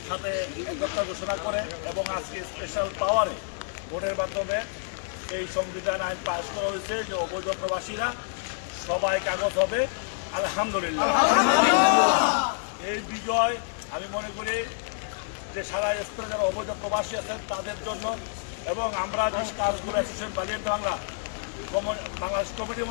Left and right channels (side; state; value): right; silent; digital silence